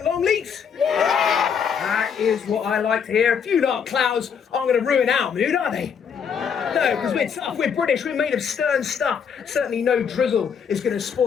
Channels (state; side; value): quieter; right; 7.0 dB